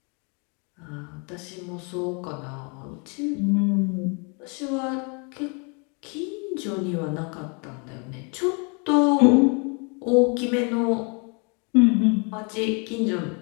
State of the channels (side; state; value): right; quieter; 34.5 dB